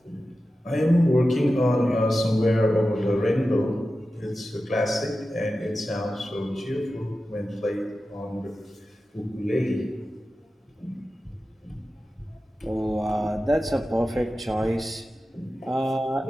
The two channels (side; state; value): both; normal; correlation 0.93